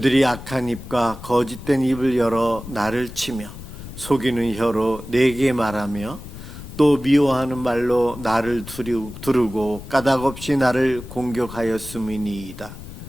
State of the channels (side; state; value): left; noise; rumble, 13 dB below the sound